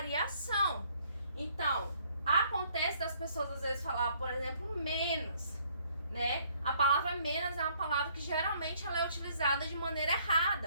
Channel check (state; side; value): inverted; both; correlation -0.65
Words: Então, acontece das pessoas às vezes falar, por exemplo, menos, né? A palavra menos é uma palavra que geralmente ela é utilizada de maneira